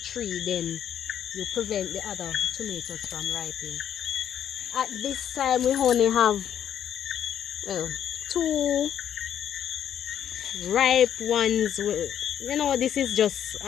then you prevent the other tomatoes from ripening. At this time we only have, well, two ripe ones. You know, this is just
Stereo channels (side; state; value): right; quieter; 9.7 dB